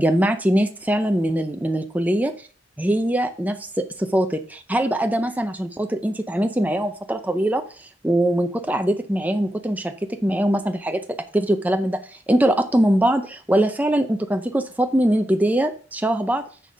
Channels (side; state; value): both; normal; correlation 0.88